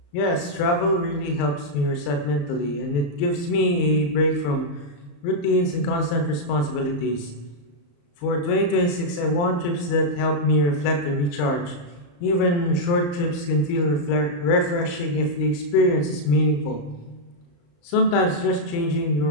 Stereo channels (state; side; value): late; right; 35 ms